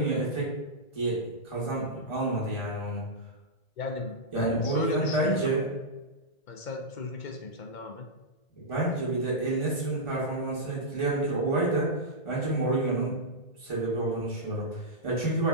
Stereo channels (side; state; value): right; late; 1.4 ms